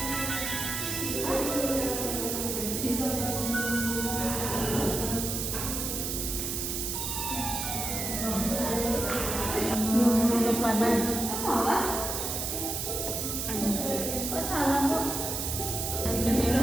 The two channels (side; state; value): right; noise; hiss, 2 dB below the sound